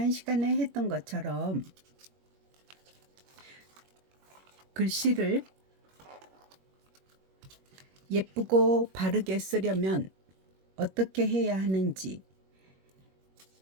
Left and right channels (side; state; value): left; late; 21 ms